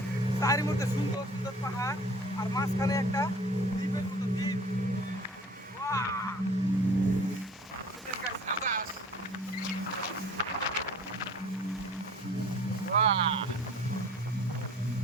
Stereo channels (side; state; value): both; normal; correlation 0.47